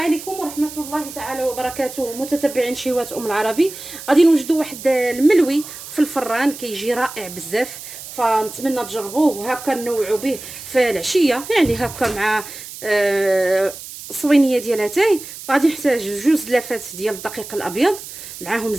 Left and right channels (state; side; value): noise; right; hiss, 13 dB below the sound